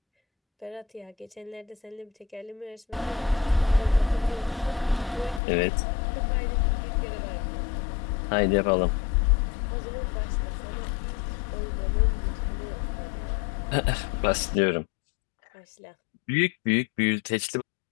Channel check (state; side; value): drops out; right; at 5.4 s